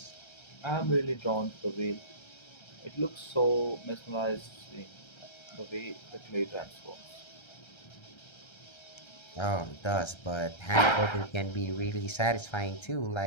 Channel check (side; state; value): right; late; 1.3 ms